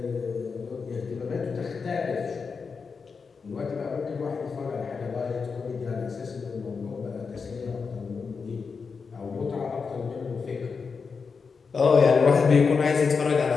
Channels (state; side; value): quieter; right; 5.3 dB